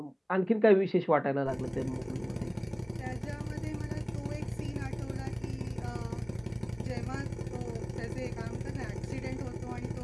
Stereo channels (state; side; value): identical; both; correlation 1.00